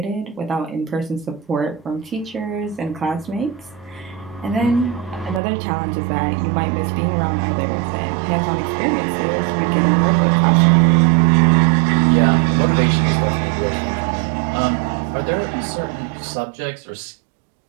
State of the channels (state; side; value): drops out; left; at 5.4 s